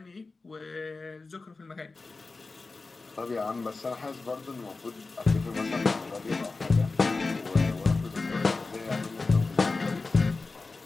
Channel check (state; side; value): quieter; right; 3.8 dB